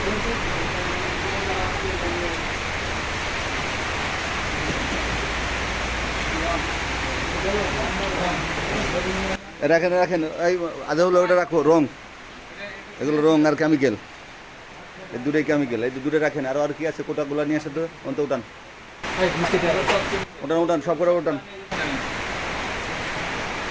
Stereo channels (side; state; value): both; identical; correlation 1.00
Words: রাখেন রাখেন, এই আধা হলো ওটা রাখো, রং এগুলো রং আর কেমিক্যাল, এই দুটোই কেমিক্যাল। এই দূরে রাখেন। আর কি আছে? কোটাগুলো নিয়ে আসে তো, অন্ত উঠান উঠান উঠান, সব করে উঠান।